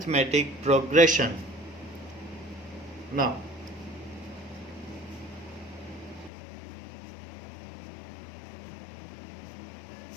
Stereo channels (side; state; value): right; drops out; at 6.3 s